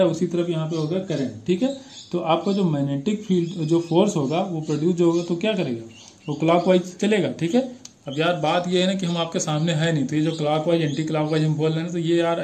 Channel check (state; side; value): identical; both; correlation 1.00